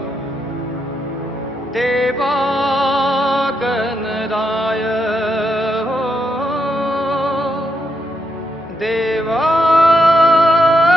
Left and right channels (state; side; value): normal; both; correlation 0.81